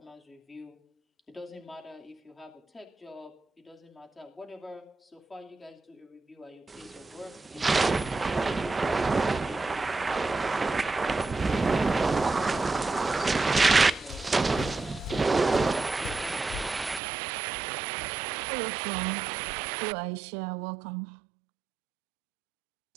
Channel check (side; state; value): left; drops out; at 17.0 s